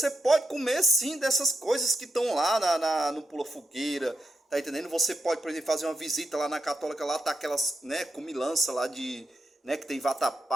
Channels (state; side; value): normal; both; correlation 0.84